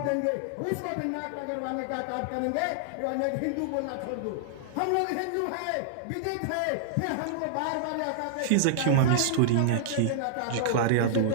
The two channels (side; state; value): both; different; correlation -0.01